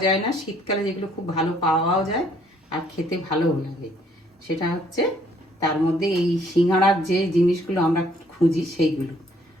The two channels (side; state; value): both; normal; correlation 0.64